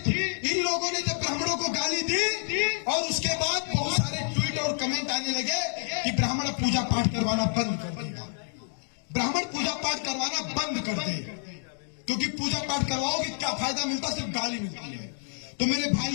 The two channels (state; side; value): silent; right; 59 dB below the other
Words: इन लोगों ने जब ब्राह्मणों को गाली दी और उसके बाद बहुत सारे ट्वीट और कमेंट आने लगे कि ब्राह्मण पूजा पाठ करवाना बंद कर देगा, ब्राह्मण पूजा पाठ करवाना बंद कर दे, क्योंकि पूजा पाठ करवाओगे क्या फायदा मिलता, सिर्फ गाली मिलती है। तो मेरे